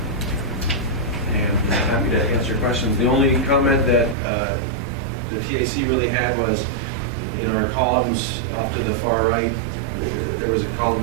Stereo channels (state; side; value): drops out; left; at 4.2 s